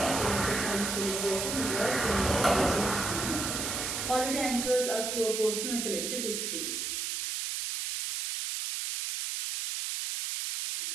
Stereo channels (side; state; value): right; noise; hiss, 2 dB below the sound